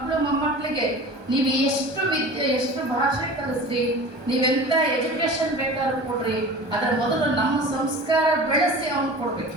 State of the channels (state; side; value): late; left; 1.2 ms